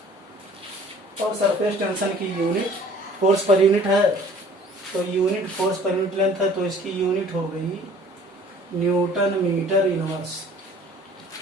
और सरफेस टेंशन की यूनिट फोर्स पर यूनिट है, तो unit force per unit length है, तो इसकी यूनिट हो गई न्यूटन मीटर इनवर्स।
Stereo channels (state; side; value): normal; both; correlation 0.52